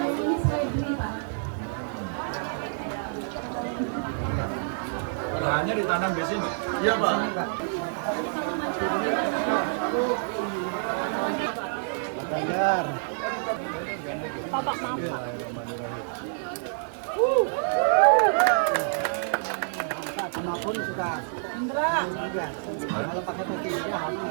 Lahannya ditanam di sini? Iya, Pak. Pak Ganjar. Bapak maaf. Apapun suka. Kalau pakai putih itu harus.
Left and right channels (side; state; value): left; silent; digital silence